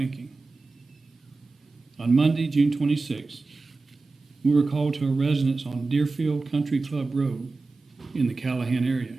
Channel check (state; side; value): quieter; left; 3.7 dB